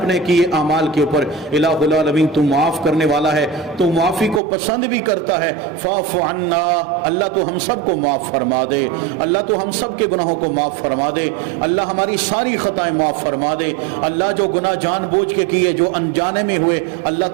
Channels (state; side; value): drops out; left; at 4.4 s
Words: کیے اعمال کے اوپر، الہ العالمین تو معاف کرنے والا ہے، تو معافی کو پسند بھی کرتا ہے، فاعف عنا، اللہ تو ہم سب کو معاف فرما دے، اللہ تو ہم سب کے گناہوں کو معاف فرما دے، اللہ ہماری ساری خطائیں معاف فرما دے، اللہ جو گناہ جان بوجھ کے کیے، جو انجانے میں ہوئے، اللہ